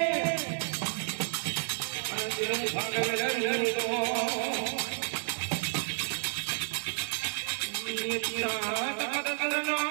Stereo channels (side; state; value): left; silent; digital silence